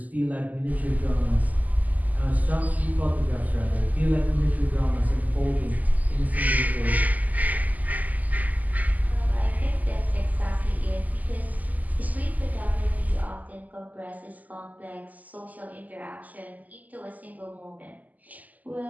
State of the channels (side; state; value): left; late; 0.079 ms